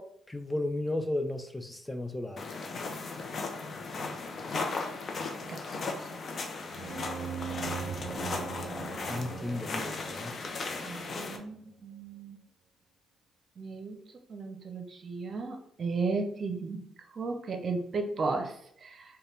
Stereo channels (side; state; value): both; normal; correlation 0.78